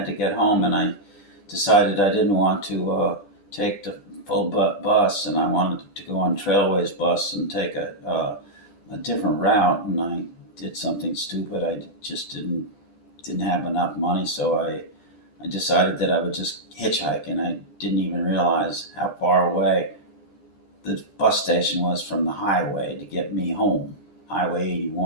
to get home, and I decided I didn't want to take the full bus, and I wanted to go on Trailways bus and take a different route, and I did something stupid. I just didn't have enough money, so I decided that I would just hitchhike, and I didn't even realize how far away the bus station was from the highway to get me home. Highway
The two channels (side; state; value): right; late; 10 ms